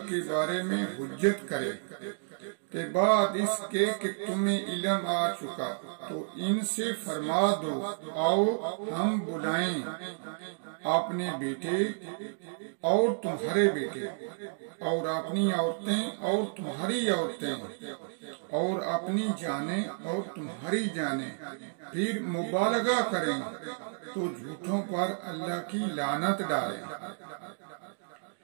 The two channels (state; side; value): silent; left; digital silence